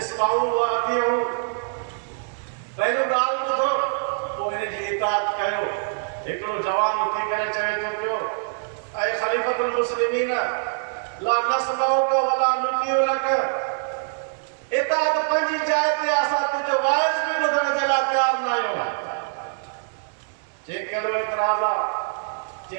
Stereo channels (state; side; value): silent; left; digital silence